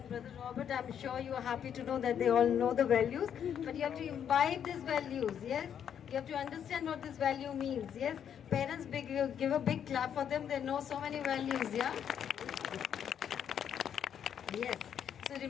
brother Robert, I'm sure you are happy to know that they all know the values, but you have to imbibe these values, yes? You have to understand what this value means, yes? Parents, give a big clap for them, they know so many values, yeah? Yes. So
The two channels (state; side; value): quieter; right; 8.7 dB